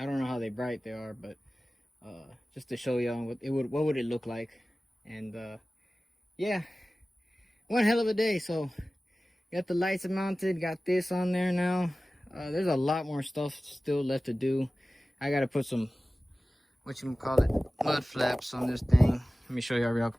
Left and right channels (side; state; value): both; normal; correlation 0.97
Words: don't know how bright they are, but just to show you what would it look like. And yeah, one hell of a day. So got the lights mounted, got this on there now. There's a lot more stuff still left to do. I gotta put some, mud flaps on this thing. Let me show you